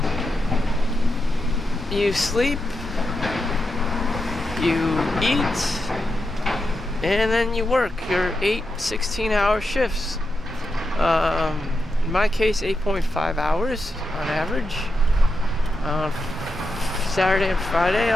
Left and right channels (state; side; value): normal; both; correlation 0.87